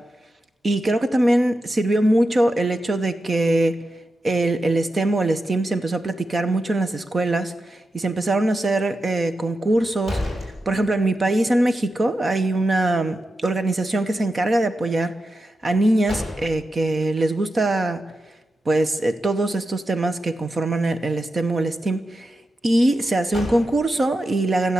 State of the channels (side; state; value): both; normal; correlation 0.89